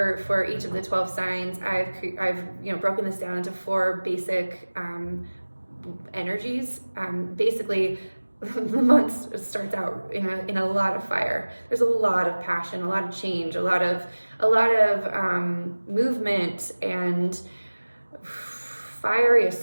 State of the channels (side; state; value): both; inverted; correlation -1.00